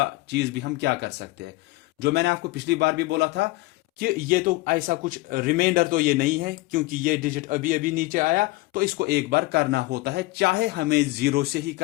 चीज भी हम क्या कर सकते हैं। जो मैंने आपको पिछली बार भी बोला था कि ये तो ऐसा कुछ रिमाइंडर तो ये नहीं है, क्योंकि ये डिजिट अभी अभी नीचे आया, तो इसको एक बार करना होता है, चाहे हमें 0 से ही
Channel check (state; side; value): quieter; right; 20.7 dB